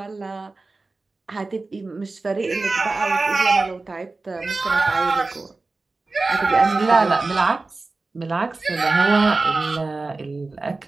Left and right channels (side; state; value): left; quieter; 3.5 dB